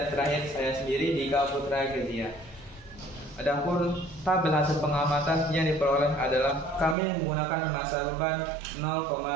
terakhir saya sendiri Dika Putra Kezia. Adapun tabel hasil pengamatan yang diperoleh adalah kami menggunakan massa beban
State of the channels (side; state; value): left; drops out; at 7.0 s